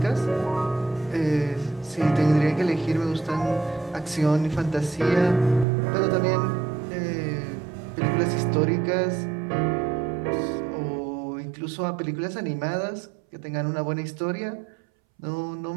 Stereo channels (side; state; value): left; drops out; at 5.7 s